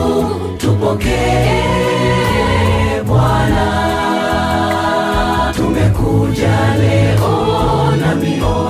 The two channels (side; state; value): both; identical; correlation 1.00